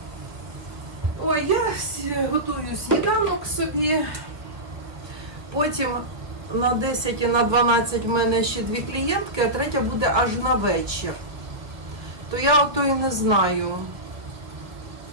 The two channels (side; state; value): left; late; 1.0 ms